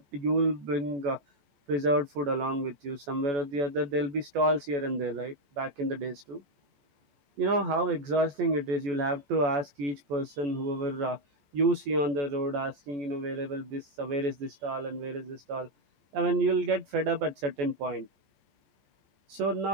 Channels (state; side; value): late; left; 14 ms